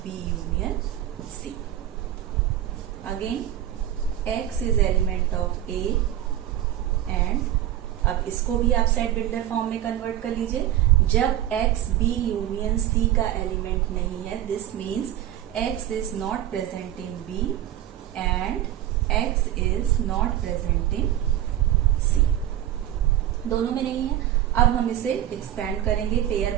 B union C। Again x is element of A, and अब इसको भी आप सेट बिल्डर फॉर्म में कन्वर्ट कर लीजिए। जब x B यूनियन C का एलिमेंट नहीं है, this means x is not present in B and x is not present in C. दोनों में नहीं है। अब हम इसे एक्सपेंड करेंगे, पेयर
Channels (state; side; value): quieter; left; 12.4 dB